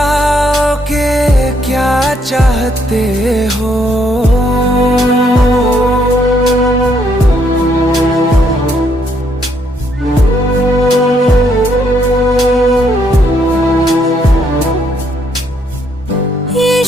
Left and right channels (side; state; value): both; normal; correlation 0.71